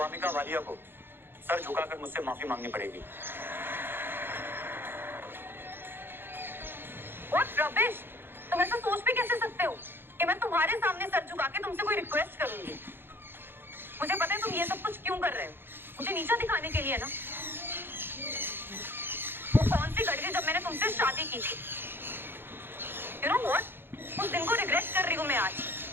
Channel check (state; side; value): late; left; 0.10 ms